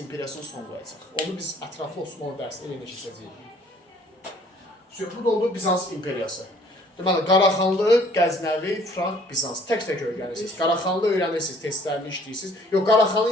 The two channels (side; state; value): both; normal; correlation 0.58